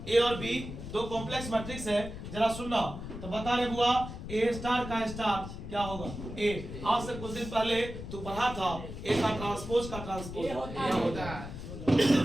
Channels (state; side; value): noise; left; rumble, 9 dB below the sound